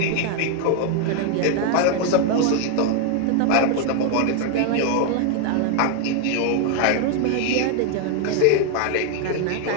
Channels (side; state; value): both; different; correlation 0.01